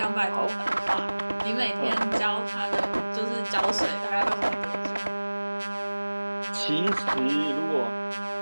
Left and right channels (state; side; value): inverted; both; correlation -1.00